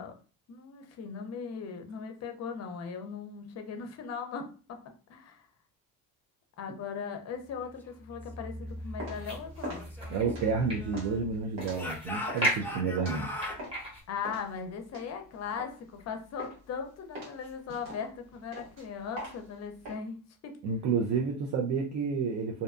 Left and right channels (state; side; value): normal; both; correlation 0.11